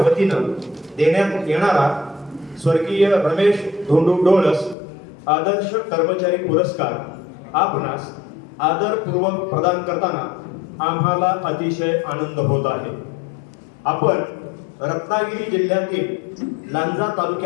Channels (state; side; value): drops out; right; at 4.8 s